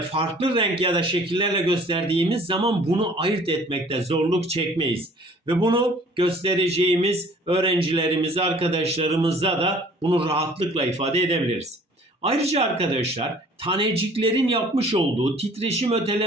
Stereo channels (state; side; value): normal; both; correlation 0.53